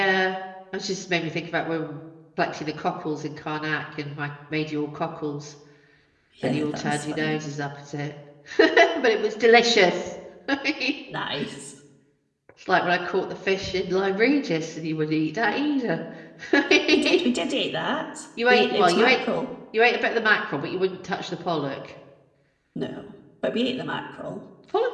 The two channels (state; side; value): identical; both; correlation 1.00